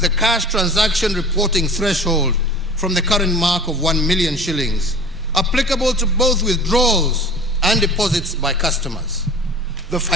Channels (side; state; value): both; normal; correlation 0.41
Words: cash transaction reporting threshold from the current mark of 1 million shillings, applicable to both withdrawals and deposits by customers. The